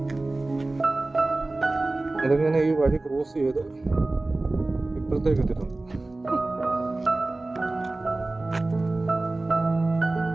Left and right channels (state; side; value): quieter; left; 3.0 dB